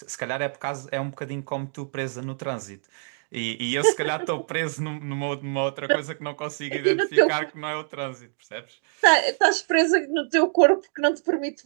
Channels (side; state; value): left; silent; digital silence